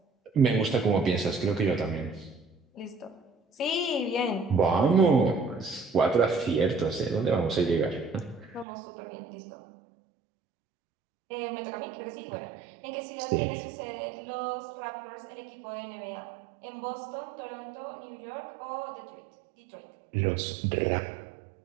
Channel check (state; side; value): drops out; left; at 8.7 s